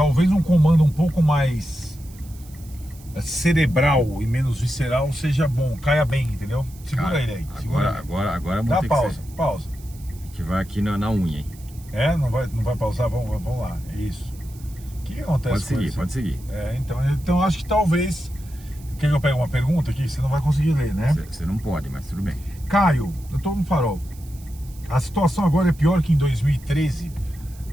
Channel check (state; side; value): noise; right; hiss, 23 dB below the sound